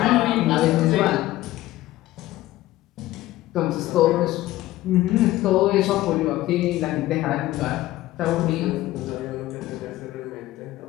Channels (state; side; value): quieter; right; 16.1 dB